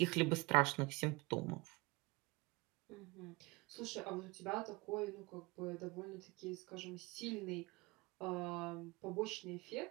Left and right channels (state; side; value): quieter; left; 24.9 dB